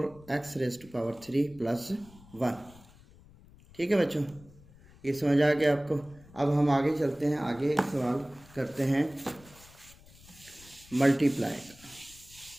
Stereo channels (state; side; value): noise; left; rumble, 23 dB below the sound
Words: प्लस 1। ठीक है बच्चों, ये समझ आ गया आपको। अब हम आगे चलते हैं। आगे एक सवाल करते हैं मल्टीप्लाई का।